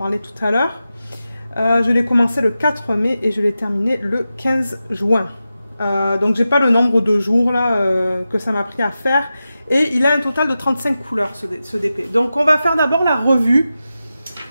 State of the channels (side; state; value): both; inverted; correlation -0.92